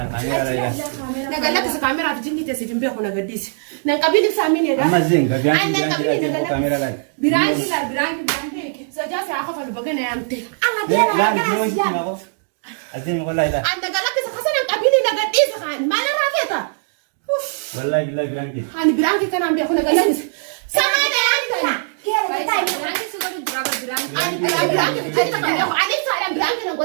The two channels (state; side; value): silent; left; digital silence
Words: نقلت الكاميرا في جني تسجن بيه ولا قديس نقبل سامين أما زين كاميرا لا. Biraanki سجاسي أخاف البقنا يا أمتي لا نحن نسمع ما أزين والله لا. أنا قلت خسنا نقبل نقديس خان ما أنا رافيتا والله بالله برانك. أنا برانك كان عم بيأخذ قلت سامعنا يا أنت كيف تايم biraanki sudah berapa biraanki. أنا برانك أنت كان بيأخذ عليك سالم برانك